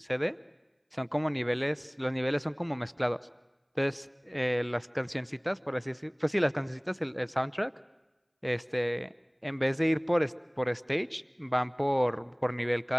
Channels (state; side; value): identical; both; correlation 1.00